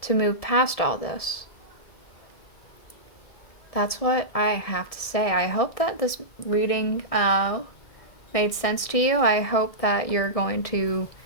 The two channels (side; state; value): right; late; 1.6 ms